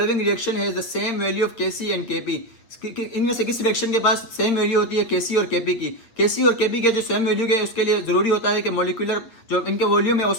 reaction has the same value of KC and KP, इनमें से किस रिएक्शन के पास सेम वैल्यू होती है केसी और केपी की। केसी और केपी के जो सेम वैल्यू के उसके लिए जरूरी होता है कि मॉलिक्यूलर जो इनके वॉल्यूम है वो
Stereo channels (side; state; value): right; late; 8.2 ms